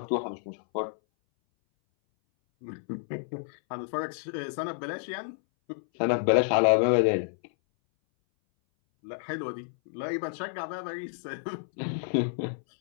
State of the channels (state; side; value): silent; right; 58 dB below the other